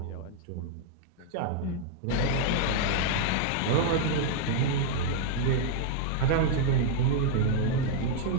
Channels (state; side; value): different; both; correlation -0.01